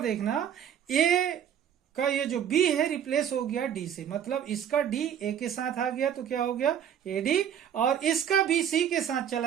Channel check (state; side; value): quieter; left; 9.2 dB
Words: A का ये जो B है रिप्लेस हो गया D से, मतलब इसका D A के साथ आ गया तो क्या हो गया? AD, और इसका B C के साथ